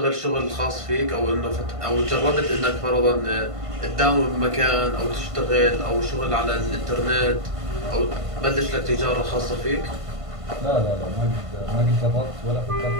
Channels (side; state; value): left; late; 1.5 ms